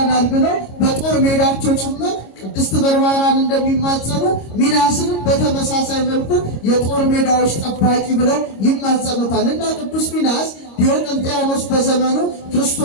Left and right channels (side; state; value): right; late; 26 ms